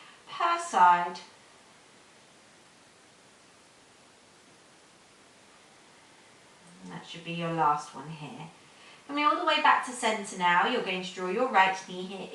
per side. And that should be your last one here. Coming all the way back to center now, you're going to draw your right knee here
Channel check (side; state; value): both; identical; correlation 1.00